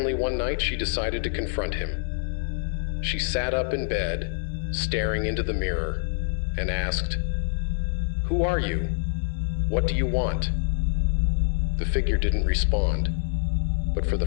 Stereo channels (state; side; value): silent; right; 61 dB below the other